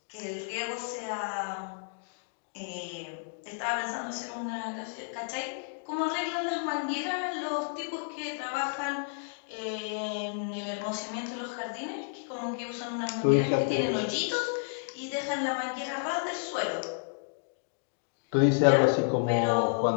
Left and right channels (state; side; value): silent; right; digital silence